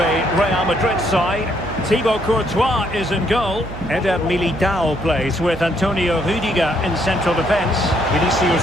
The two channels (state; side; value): noise; right; hum, 12 dB below the sound